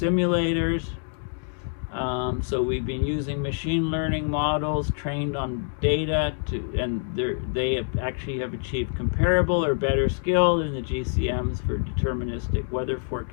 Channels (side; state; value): right; silent; digital silence